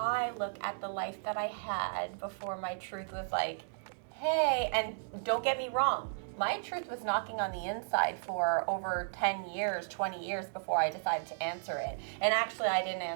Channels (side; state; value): left; silent; digital silence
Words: look at the life that I had before my truth was hey, and don't get me wrong, my truth was knocking on the inside for over 10 years, 20 years before I decided to answer it. And actually, I didn't